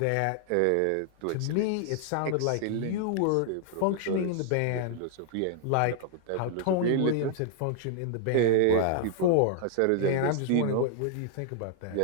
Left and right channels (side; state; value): both; different; correlation 0.00